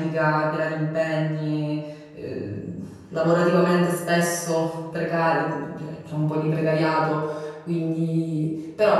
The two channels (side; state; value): both; identical; correlation 1.00